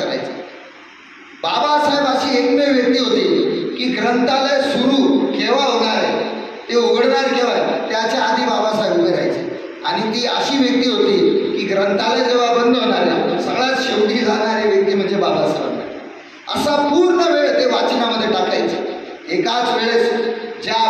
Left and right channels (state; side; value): identical; both; correlation 1.00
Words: करायचा. बाबासाहेब अशी एकमेव व्यक्ती होती की ग्रंथालय सुरू केव्हा होणार आहे, ते उघडणार केव्हा, त्याच्या आधी बाबासाहेब उभे राहायचे. आणि ती अशी व्यक्ती होती की ग्रंथालय जेव्हा बंद होणार आहे सगळ्यात शेवटी जाणारी व्यक्ती म्हणजे बाबासाहेब. असा पूर्ण वेळ ते वाचनामध्ये टाकायचे. एकाच वेळेस ज्या